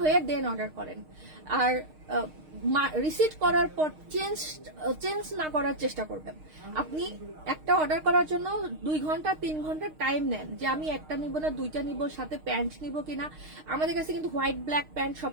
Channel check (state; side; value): late; left; 6.5 ms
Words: হয়ে দেন অর্ডার করেন। আর রিসিট করার পর চেঞ্জ না করার চেষ্টা করবেন। আপনি একটা অর্ডার করার জন্য 2 ঘন্টা 3 ঘন্টা টাইম নেন যে আমি একটা নিব না দুইটা নিব, সাথে প্যান্ট নিব কিনা। আমাদের কাছে কিন্তু হোয়াইট ব্ল্যাক প্যান্ট